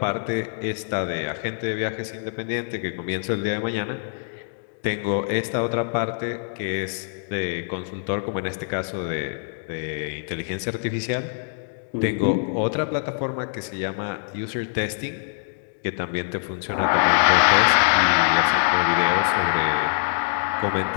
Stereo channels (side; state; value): right; silent; digital silence